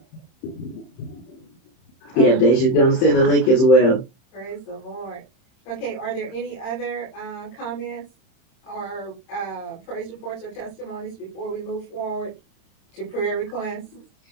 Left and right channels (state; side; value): late; right; 31 ms